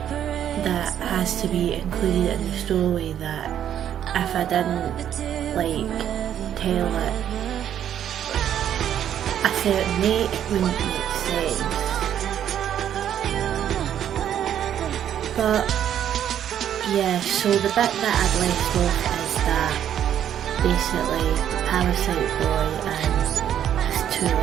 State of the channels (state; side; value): quieter; left; 10.0 dB